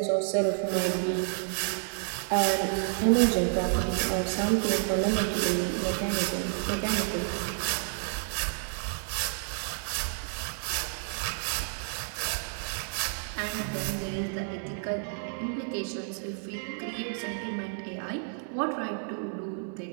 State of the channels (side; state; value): left; silent; 58 dB below the other